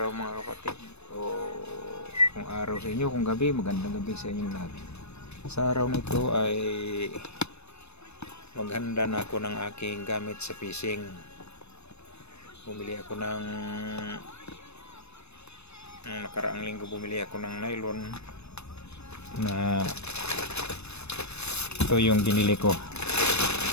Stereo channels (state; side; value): late; right; 0.81 ms